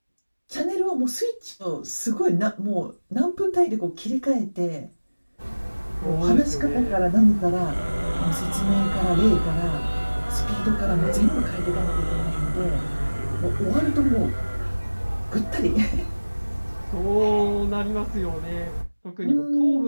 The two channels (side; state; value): both; inverted; correlation -1.00